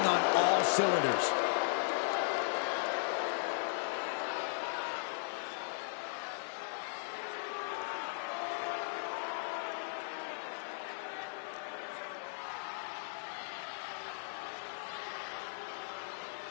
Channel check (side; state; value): right; silent; digital silence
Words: on all cylinders.